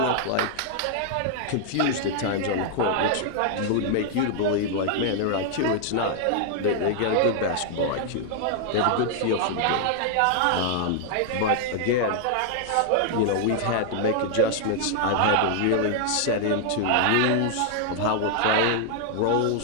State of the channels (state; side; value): different; both; correlation 0.00